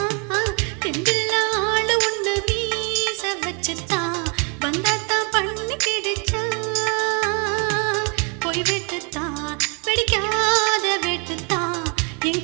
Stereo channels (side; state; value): left; quieter; 35.4 dB